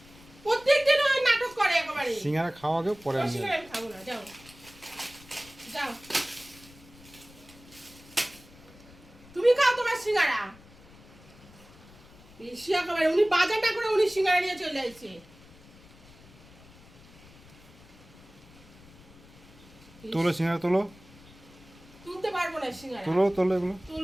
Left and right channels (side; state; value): left; noise; rumble, 22 dB below the sound